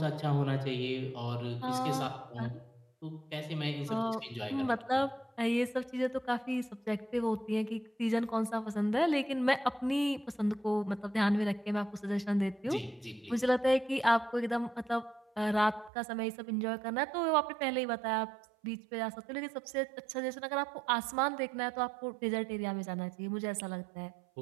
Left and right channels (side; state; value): left; drops out; at 15.9 s